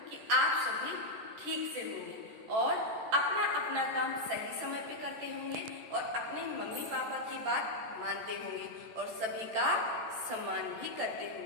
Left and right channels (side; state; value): left; late; 14 ms